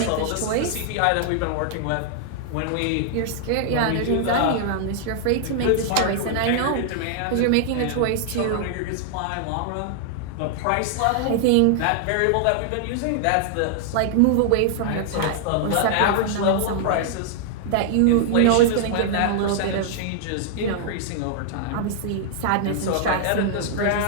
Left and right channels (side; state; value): both; different; correlation -0.01